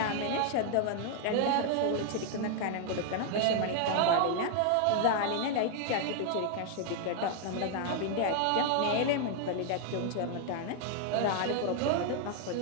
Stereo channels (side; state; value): both; different; correlation 0.00